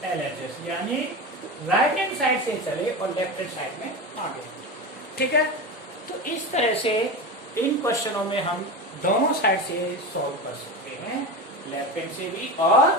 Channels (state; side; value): normal; both; correlation 0.23